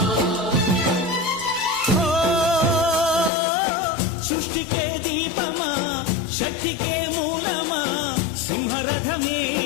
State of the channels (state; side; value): drops out; right; at 3.3 s